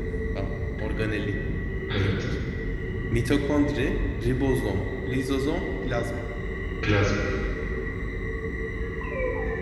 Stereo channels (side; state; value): both; identical; correlation 1.00